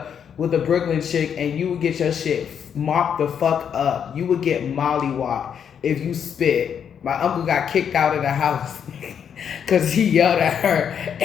with a Brooklyn chick and you would get your shit mopped the fuck up. You would get mollywopped if you spit. My uncle got kicked out of the house because he yelled at her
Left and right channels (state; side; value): quieter; right; 7.9 dB